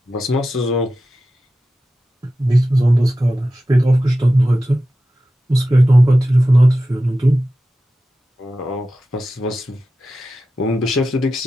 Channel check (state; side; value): normal; both; correlation 0.93